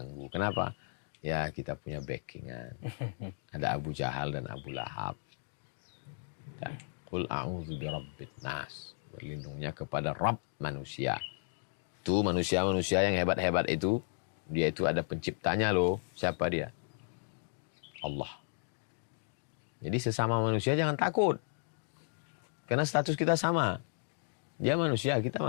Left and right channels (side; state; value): right; silent; digital silence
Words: Kenapa? Ya kita punya backingan. Ada Abu Jahal dan Abu Lahab. Dan Qul a'udzu bi Rabbin Nas. Berlindungnya kepada Rabb manusia. Itu manusia-manusia yang hebat-hebat itu. Dia itu ada penciptanya loh. Siapa dia? Allah. Jadi sesama manusia jangan takut. Karena status kita sama. Dia manusia, kita